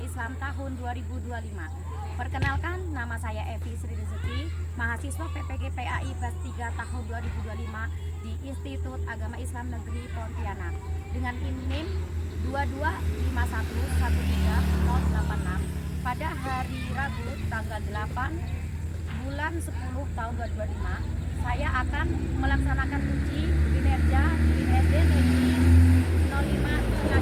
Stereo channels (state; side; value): identical; both; correlation 1.00